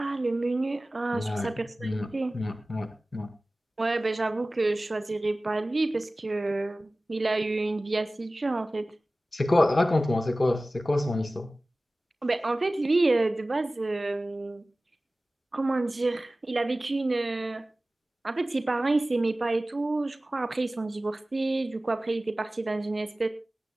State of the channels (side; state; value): both; normal; correlation 0.97